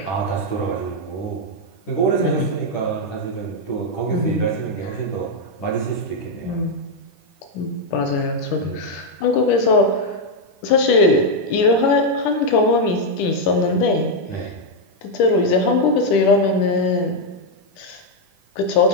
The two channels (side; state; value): right; late; 10 ms